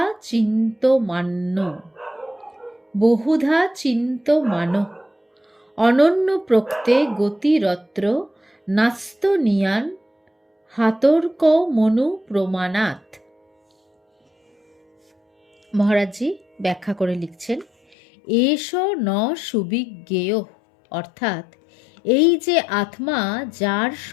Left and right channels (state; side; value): drops out; right; at 17.9 s